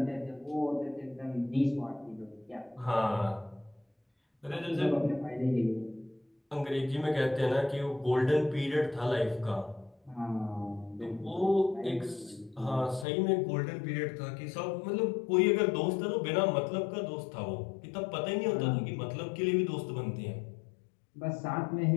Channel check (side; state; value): right; drops out; at 13.1 s